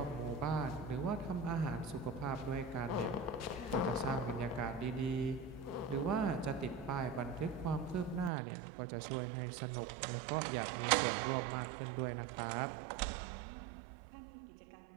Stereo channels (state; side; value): drops out; left; at 8.3 s